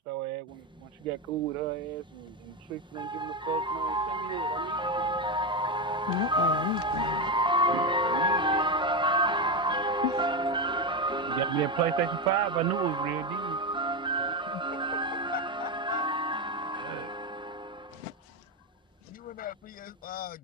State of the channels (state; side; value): normal; both; correlation 0.12